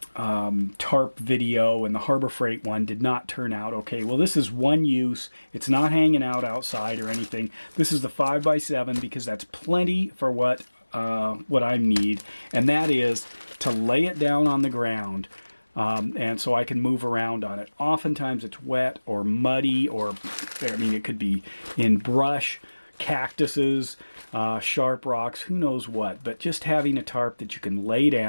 tarp video, and the Harbor Freight one did not turn out okay. Well, this is one use. It's not hanging out outside or anything. This is the 5x7 because that's plenty for what I need, and that is to lay it down on the ground, and so I can move around on it. Oftentimes it's wet or muddy, or it could be in brush, cactuses, sharp rocks, who knows what. But just having a tarp that you can lay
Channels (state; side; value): inverted; both; correlation -1.00